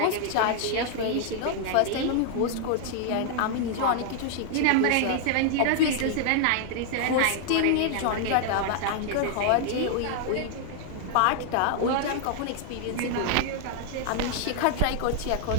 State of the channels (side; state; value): both; different; correlation 0.00